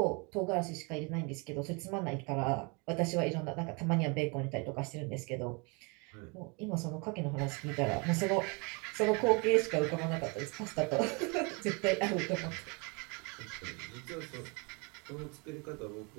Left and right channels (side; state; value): left; quieter; 31.3 dB